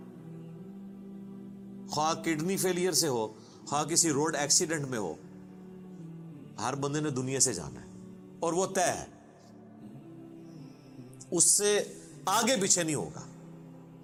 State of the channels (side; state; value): both; identical; correlation 1.00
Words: خواہ کڈنی فیلئر سے ہو، خواہ کسی روڈ ایکسیڈنٹ میں ہو، ہر بندے نے دنیا سے جانا ہے اور وہ طے ہے، اس سے آگے پیچھے نہیں ہوگا۔